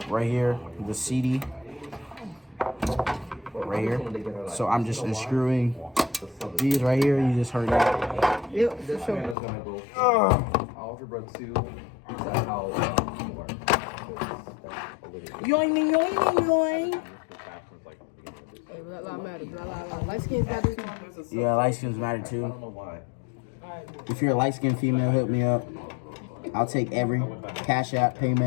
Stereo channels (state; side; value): drops out; right; at 9.3 s